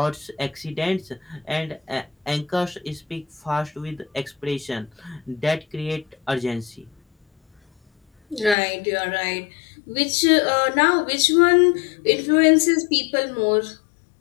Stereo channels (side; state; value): right; drops out; at 8.6 s